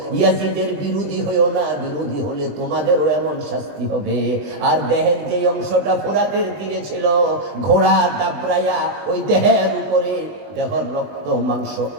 ইয়াজিদের বিরোধী হইও না, বিরোধী হলে তোমাদেরও এমন শাস্তি হবে। আর দেহের যে অংশটা ফুরাতের তীরে ছিল, ঘোড়া দাবরাইয়া ওই দেহের উপরে দেহর রক্ত মাংস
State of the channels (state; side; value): late; left; 20 ms